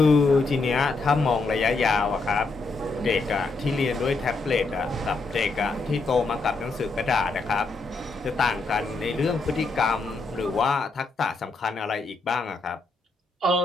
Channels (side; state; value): right; quieter; 3.7 dB